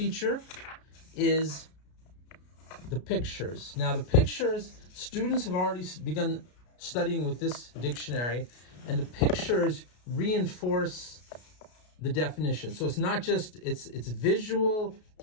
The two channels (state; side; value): late; right; 33 ms